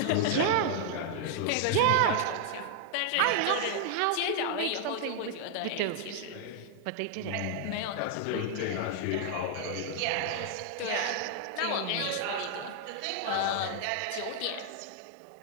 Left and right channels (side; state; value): both; different; correlation 0.00